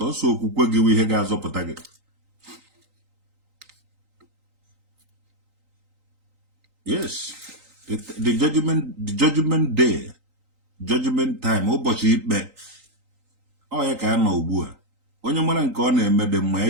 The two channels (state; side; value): late; left; 3.9 ms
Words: okwukwe gị ihe ga-azọpụta gị yes the judgment day judgment time ụbọchị ikpe ọ ya ka a nọ ugbu a onye mara nke ọ na-eme dị mma ya